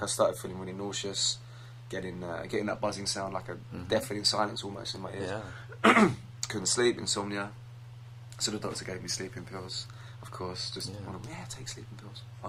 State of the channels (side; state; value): both; identical; correlation 1.00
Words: I started feeling really nauseous, getting that buzzing sound, like a deafening silence almost in my ears. Couldn't sleep, insomnia. So the doctor gave me sleeping pills. Of course, just take sleeping pills,